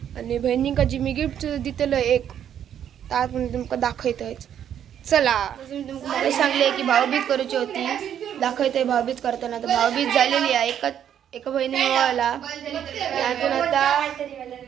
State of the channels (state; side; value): quieter; left; 9.6 dB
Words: आणि बहिणींका जी मी गिफ्ट दिलेलं एक त्यात मी तुमका दाखवतोय। चला मी तुमका सांगले की भाऊबीज करूची होती, दाखवतोय भाऊबीज करताना। तर भाऊबीज झालेली आहे, एका बहिणीने ओवाळला, त्यातून आता